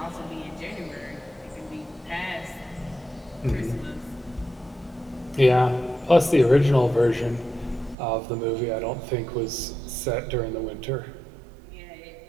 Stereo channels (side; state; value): left; drops out; at 8.0 s